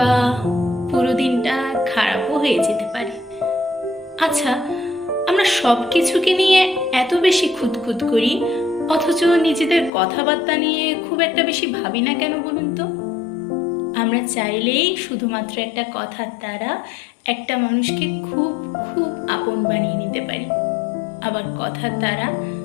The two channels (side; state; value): right; drops out; at 9.9 s